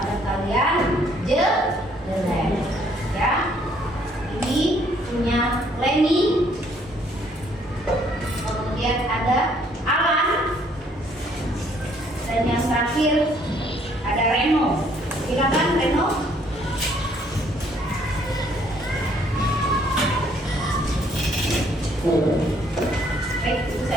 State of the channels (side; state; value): both; normal; correlation 0.65